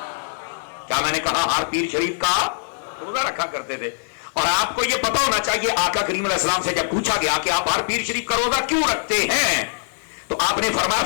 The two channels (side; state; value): right; silent; digital silence